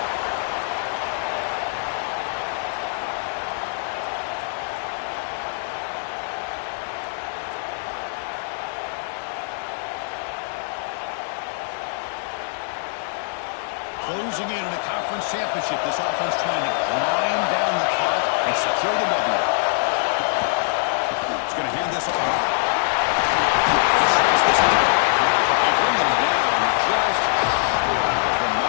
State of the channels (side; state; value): right; silent; digital silence